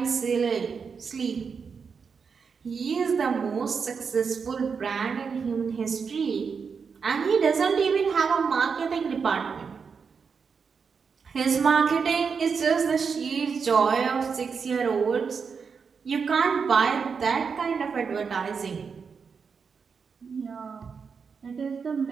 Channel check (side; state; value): left; quieter; 5.8 dB